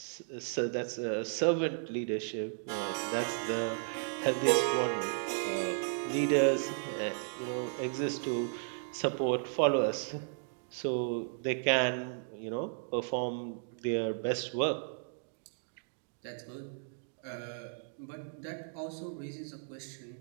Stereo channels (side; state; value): left; silent; digital silence